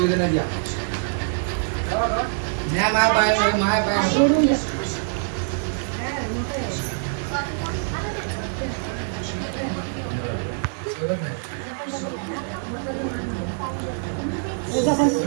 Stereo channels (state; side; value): silent; left; 56 dB below the other